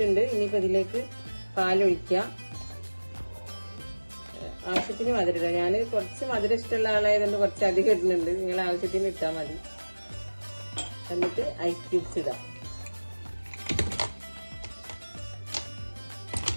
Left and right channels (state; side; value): inverted; both; correlation -1.00